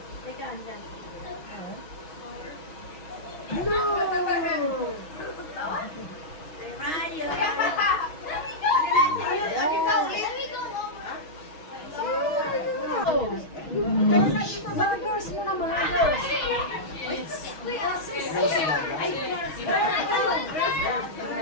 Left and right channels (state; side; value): late; right; 6.3 ms